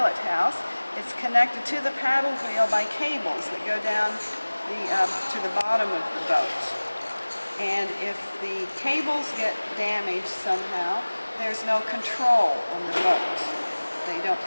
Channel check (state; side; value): inverted; both; correlation -1.00